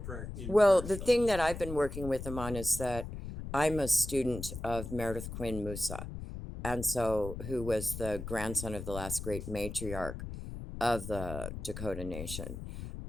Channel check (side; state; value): left; noise; rumble, 8 dB below the sound